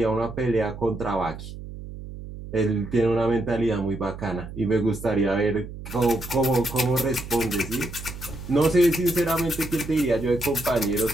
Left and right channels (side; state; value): right; noise; hum, 12 dB below the sound